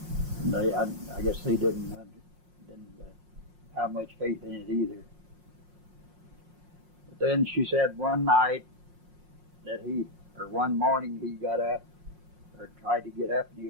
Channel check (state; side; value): late; left; 5.6 ms